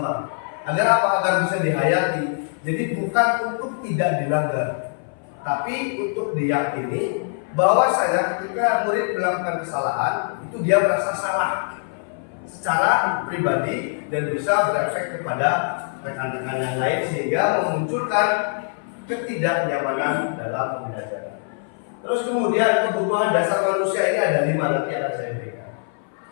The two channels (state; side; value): silent; right; 57 dB below the other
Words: Agar apa? Agar bisa dihayati. Jadi bukan untuk tidak dilanggar, tapi untuk diyakini bahwasanya ketika murid melakukan kesalahan itu dia merasa salah secara pribadi dan bisa berefek kepada rekan-rekan yang lain sehingga memunculkan ketidaknyamanan dalam pembelajaran. Terus kemudian kebutuhan dasar manusia ini ada 5, nanti akan saya berikan.